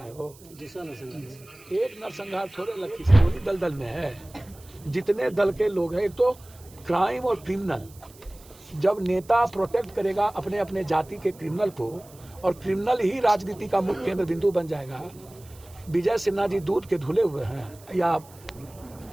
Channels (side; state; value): right; noise; hiss, 24 dB below the sound